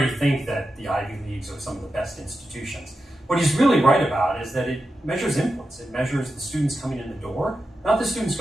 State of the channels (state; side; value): normal; both; correlation 0.90